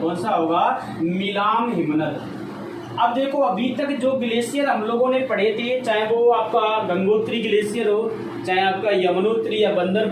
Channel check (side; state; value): both; identical; correlation 1.00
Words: सा होगा, मिलाम हिमनद। अब देखो अभी तक जो ग्लेशियर हम लोगों ने पढ़े थे, चाहे वो आपका गंगोत्री ग्लेशियर हो, चाहे आपका यमुनोत्री या